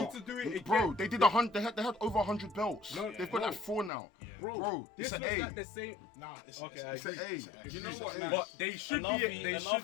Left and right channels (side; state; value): right; drops out; at 3.9 s